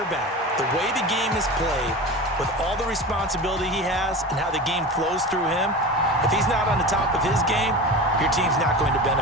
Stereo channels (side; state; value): both; normal; correlation 0.30